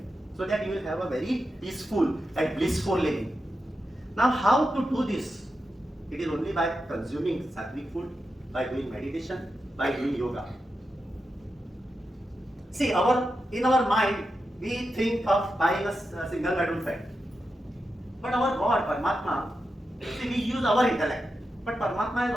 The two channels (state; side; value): normal; both; correlation 0.89